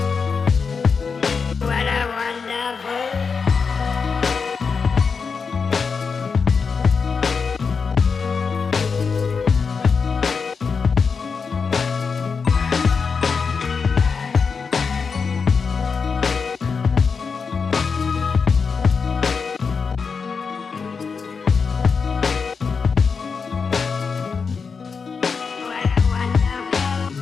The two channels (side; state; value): right; quieter; 5.4 dB